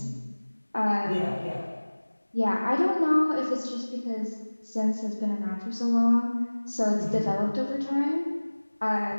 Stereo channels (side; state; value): both; inverted; correlation -1.00